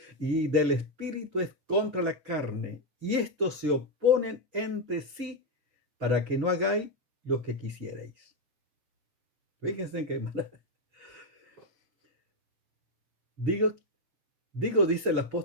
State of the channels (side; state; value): left; late; 6.8 ms